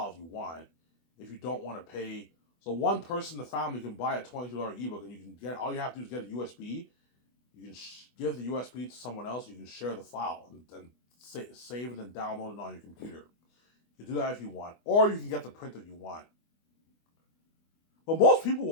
if you want, if you don't want to pay. So one person in the family can buy a $22 ebook, and you can get all you have to do is get a USB. You can give the USB to someone else. You can share the file and save it and download it on your computer. You can do that if you want, or you can get the print if you want. But most people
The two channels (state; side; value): late; right; 24 ms